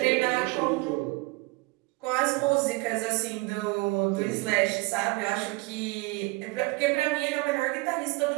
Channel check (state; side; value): quieter; left; 23.6 dB